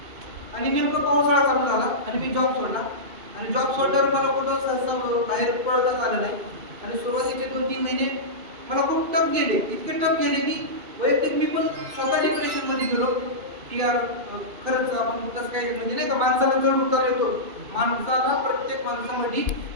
आणि नेमकं पावसाळा चालू झाला आणि मी जॉब सोडला. आणि जॉब सोडल्यावर मला कुठं सहसा बाहेर पडताच आलं नाही. आणि सुरुवातीचे 2-3 महिने मला खूप टफ गेले, इतके टफ गेले की वैयक्तिक मी पण स्वतः डिप्रेशनमध्ये गेलो की यार खरंच आपण कसं काय, म्हणजे नाही का माणसाला चढ उतार येतो. माणसाला प्रत्येक माणसामध्ये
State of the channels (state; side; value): late; left; 2.6 ms